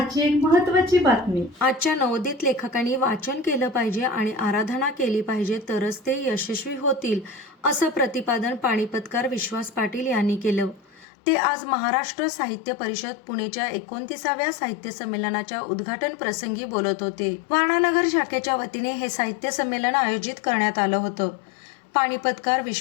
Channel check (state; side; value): drops out; right; at 11.1 s